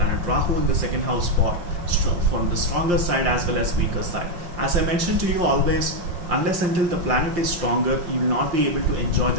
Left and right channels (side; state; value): left; late; 5.7 ms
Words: Rahu in the second house from the stronger side as well as weaker side. As I mentioned to you always, unless until the planet is stronger, you will not be able to enjoy